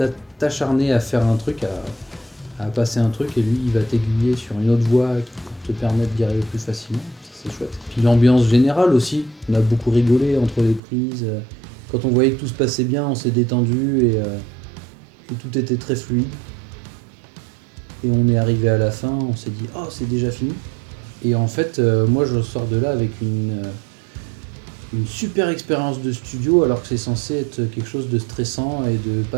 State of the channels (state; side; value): drops out; left; at 10.8 s